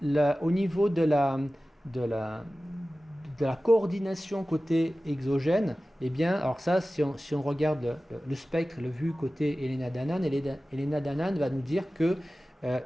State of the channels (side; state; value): both; normal; correlation 0.96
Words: au niveau de la coordination côté exogène, eh bien, alors ça, si on regarde le spectre, le vu côté Elena Danaan, Elena Danaan va nous dire que,